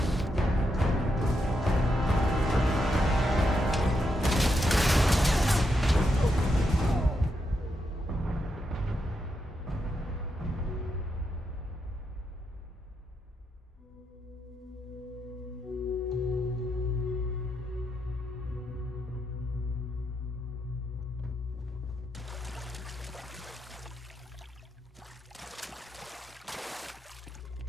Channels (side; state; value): both; normal; correlation 0.82